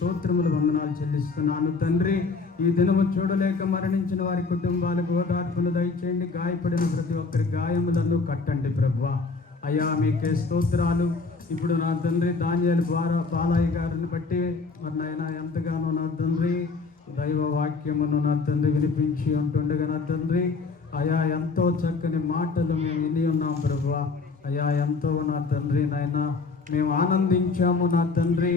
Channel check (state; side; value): quieter; right; 4.2 dB